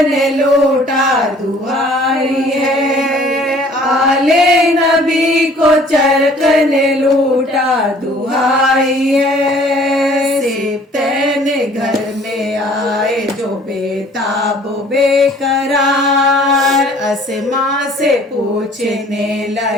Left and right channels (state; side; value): normal; both; correlation 0.54